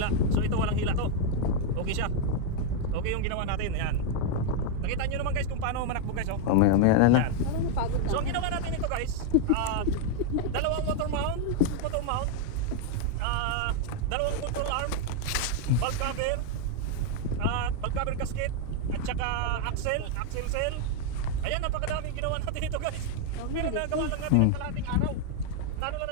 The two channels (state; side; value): different; both; correlation 0.00